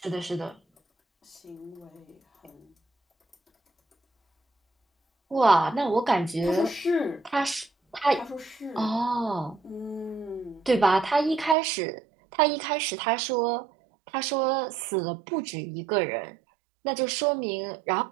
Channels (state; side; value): drops out; left; at 11.6 s